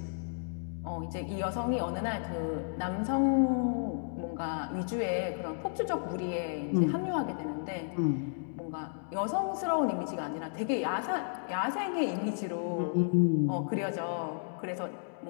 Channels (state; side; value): silent; right; digital silence